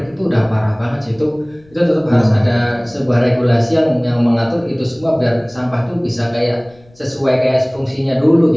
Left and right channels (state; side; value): noise; left; rumble, 29 dB below the sound